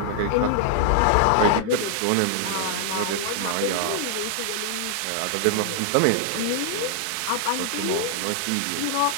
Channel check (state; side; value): different; both; correlation -0.01